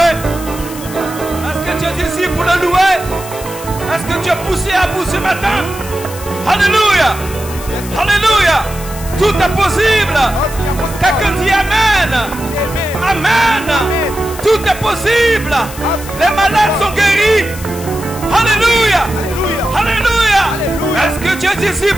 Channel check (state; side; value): noise; left; hiss, 14 dB below the sound